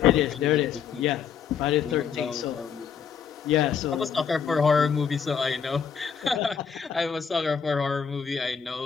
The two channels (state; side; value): quieter; right; 7.0 dB